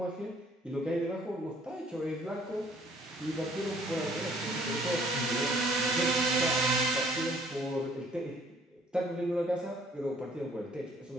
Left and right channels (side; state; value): both; normal; correlation 0.59